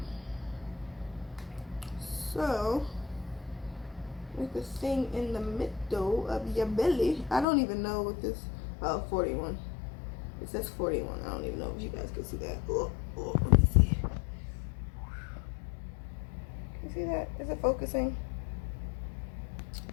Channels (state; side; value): drops out; right; at 7.5 s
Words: So, with the thing in the middle of your belly. I don't even know what this. Oh, 41. It says 41. I don't even know if you guys can see that. Oh, let me see. Can you see that? Is it focusing?